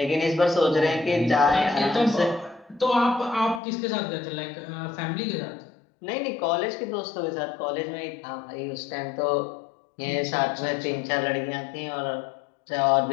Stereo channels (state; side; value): drops out; right; at 3.6 s